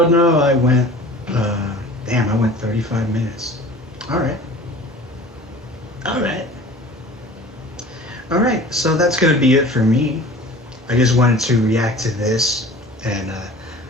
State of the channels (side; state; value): both; normal; correlation 0.42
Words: no, I went. Damn, I went 35 minutes. All right. All right. All right. So that's gonna be it for me. I just wanted to react to this and